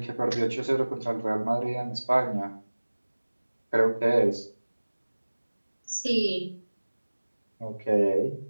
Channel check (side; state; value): both; inverted; correlation -1.00